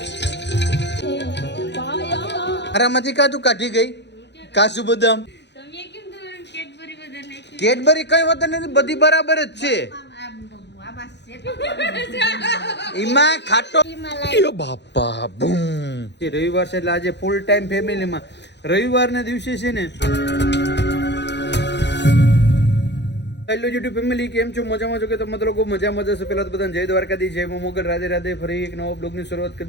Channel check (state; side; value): late; right; 0.50 ms